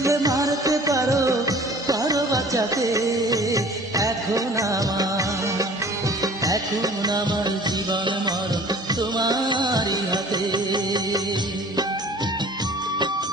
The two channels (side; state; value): both; normal; correlation 0.47